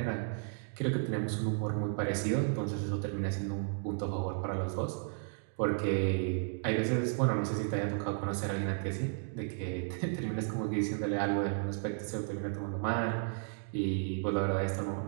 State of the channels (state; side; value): silent; left; 55 dB below the other